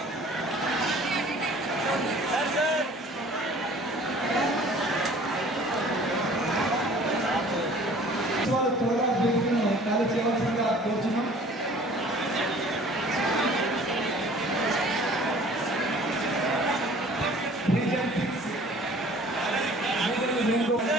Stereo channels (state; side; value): normal; both; correlation 0.50